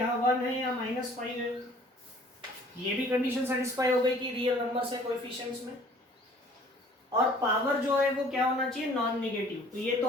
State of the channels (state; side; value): normal; both; correlation 0.53